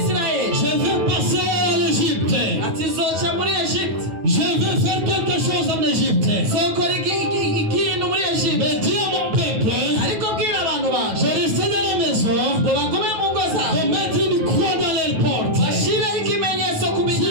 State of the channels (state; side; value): late; left; 9.4 ms